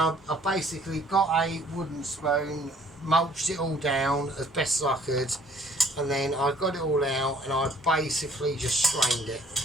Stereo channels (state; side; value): normal; both; correlation 0.58